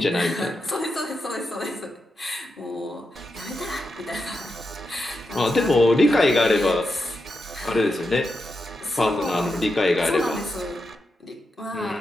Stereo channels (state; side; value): normal; both; correlation 0.87